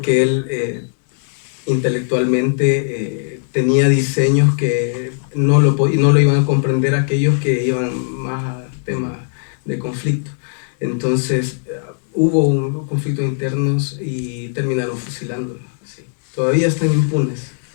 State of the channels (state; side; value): silent; right; digital silence